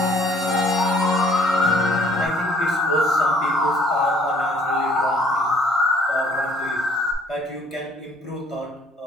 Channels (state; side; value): normal; both; correlation 0.59